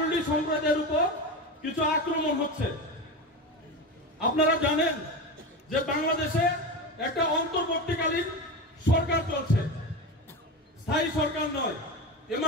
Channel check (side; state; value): both; normal; correlation 0.22